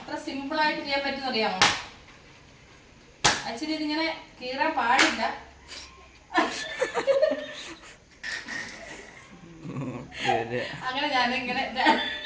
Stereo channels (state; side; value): identical; both; correlation 1.00